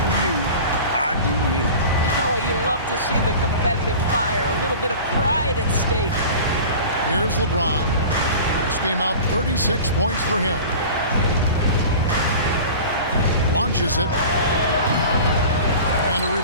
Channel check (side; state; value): both; inverted; correlation -0.37